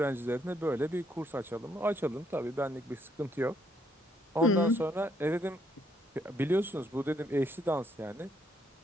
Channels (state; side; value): normal; both; correlation 0.72